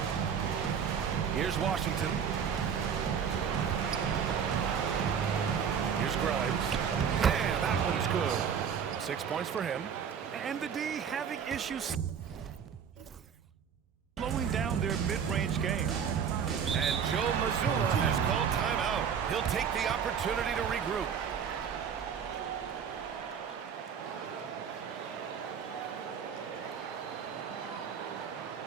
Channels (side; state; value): left; quieter; 7.4 dB